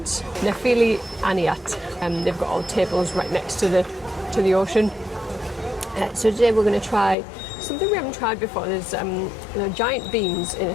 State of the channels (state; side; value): drops out; right; at 7.2 s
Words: Nefili Aniat, and they've got all the tables right next to the ocean. So today we're going to try something we haven't tried before. There's giant beans in a